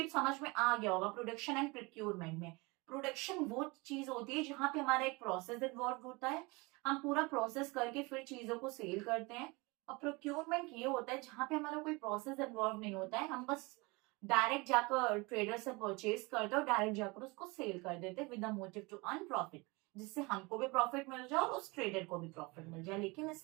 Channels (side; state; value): left; quieter; 25.9 dB